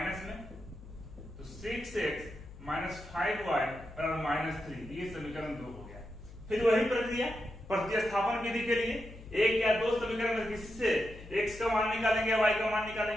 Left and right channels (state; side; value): noise; left; hum, 16 dB below the sound